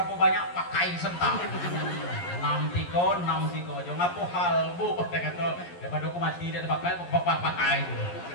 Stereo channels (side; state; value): right; late; 11 ms